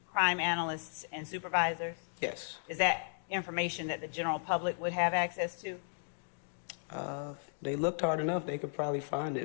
crime analysts and supervisors? Yes. Is that information that the general public would have access to? They looked hard enough, they could probably find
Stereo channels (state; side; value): silent; right; digital silence